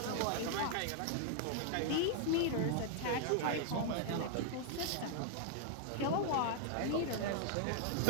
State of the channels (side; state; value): both; different; correlation 0.00